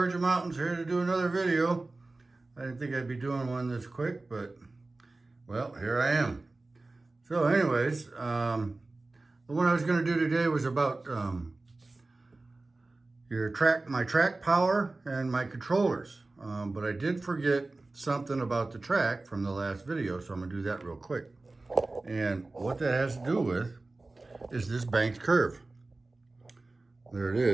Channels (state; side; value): quieter; left; 3.2 dB